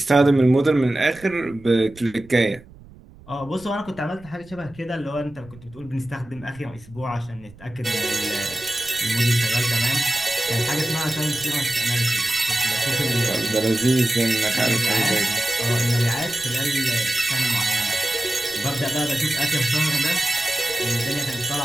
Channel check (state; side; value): noise; right; rumble, 22 dB below the sound